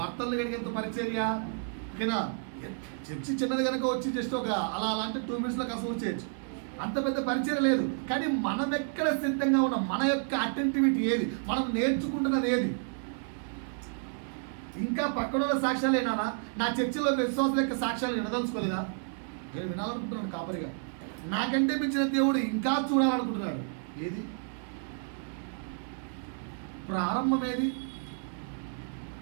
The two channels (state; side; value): silent; left; 57 dB below the other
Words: భర్తలు కడిగేంత పరిచర్య. ఓకేనా? చర్చి చిన్నది కనుక వచ్చి జస్ట్ ఒక అలా అంటే 2 minutesలో కసూరు చేయొచ్చు, అంత పెద్ద పరిచయం లేదు. కానీ మనం ఎక్కడ సిద్ధంగా ఉన్నాం, మన యొక్క అటెంటివిటీ ఏది, మనం నేర్చుకుంటున్నది ఏది. ఇంకా పక్కన సాక్ష్యాలు ఏనా? నా చర్చిలో విశ్వాసుల యొక్క సాక్ష్యాలు వినదలుచుకోలేదా? నేను వినాలనుకుంటున్నాను కాపరిగా. నాకంటే మించిన దేవుడు ఇంకా చూడాలనుకుంటున్నాడు. ఏది ప్రారంభం? ఏది